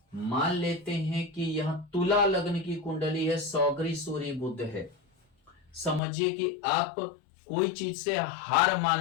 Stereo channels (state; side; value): drops out; right; at 6.0 s